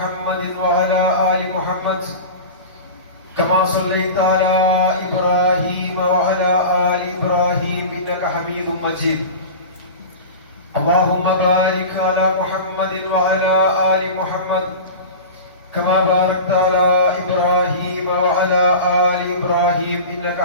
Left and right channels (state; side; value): inverted; both; correlation -0.31